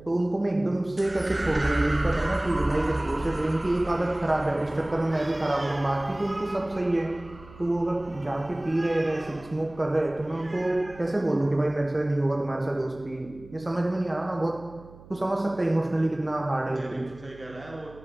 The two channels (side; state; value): right; noise; hum, 20 dB below the sound